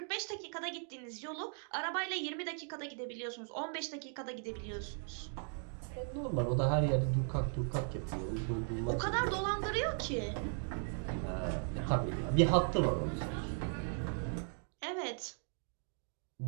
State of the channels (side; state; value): left; silent; 53 dB below the other